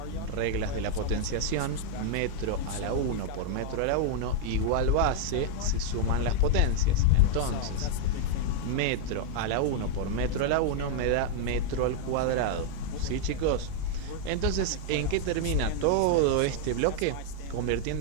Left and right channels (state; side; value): different; both; correlation 0.00